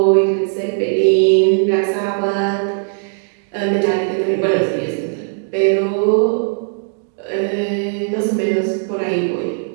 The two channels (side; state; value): left; silent; digital silence